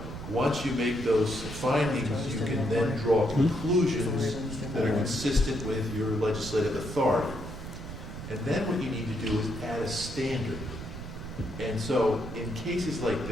once you make those findings, you can then draw conclusions that are consistent with your legislative authority. And then what you need to do is add a standard. And so in cases like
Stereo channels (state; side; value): noise; right; rumble, 9 dB below the sound